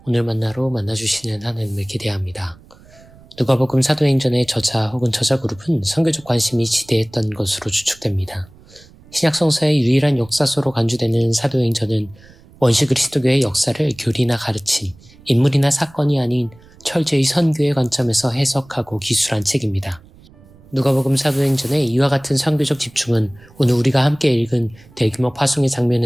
오늘 만나로 만나주시는 하나님을 기대합니다. 누가복음 사도행전의 저자 혹은 저자 그룹은 선교적 관심이 지대했던 것으로 추측됩니다. 신약성서의 유일한 역사서로 간주되는 사도행전은 원시 그리스도교의 역사를 교리나 가르침, 인물이나 사건이 아닌 철저히 선교의 관점에서 해석하고 기술한 책입니다. 누가복음 사도행전의 이와 같은 선교적 집중은 오늘 우리가 함께 읽은 대규모 파송의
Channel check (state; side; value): noise; right; rumble, 25 dB below the sound